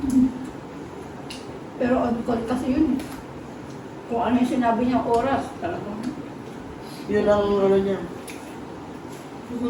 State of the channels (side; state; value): both; identical; correlation 1.00